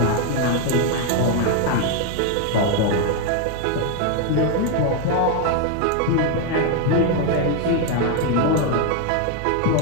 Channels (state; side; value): different; both; correlation 0.01